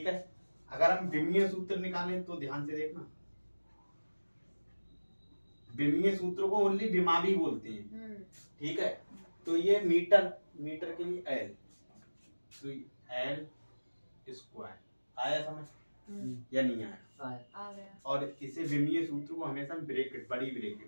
है। अगर हम विमीय सूत्र निकालें तो ध्यान से देखना, विमीय सूत्र को ओनली विमा भी बोलते हैं। ठीक है। तो ये मीटर, मीटर के लिए एल, तो एल स्क्वायर। आया समझ या नहीं आया? आ गया। और इसे विमीय सूत्र को हमेशा ब्रैकेट, बड़ी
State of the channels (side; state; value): both; inverted; correlation -1.00